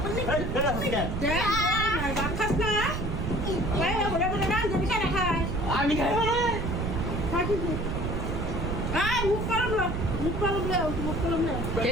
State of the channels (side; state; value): right; noise; rumble, 2 dB below the sound